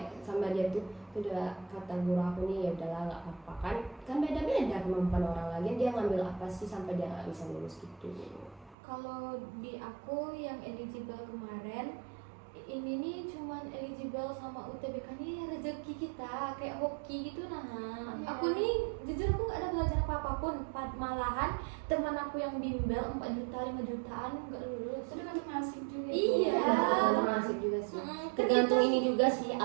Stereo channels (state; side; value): drops out; left; at 8.8 s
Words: sama dia tuh udah kata guru aku nih, ya udahlah nggak apa-apa kan beda-beda kemampuan orang lagi, dia ngambil apa sih sampai dia nggak bisa lulus gitu. Kalau di aku yang eligible kemarin, ini nih cuman eligible sama UTBK nih rezeki kita kayak hoki gitu nah. Aku nih jujur aku nggak ada belajar apa-apun, malahan teman aku yang bimbel 4 juta 5 jutaan nggak lulus. Itu kan nasib juga. Iya. Tergantung nasib juga sih. Tergantung ini juga sih